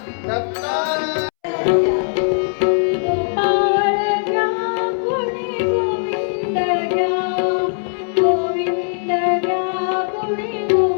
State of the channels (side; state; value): right; silent; 66 dB below the other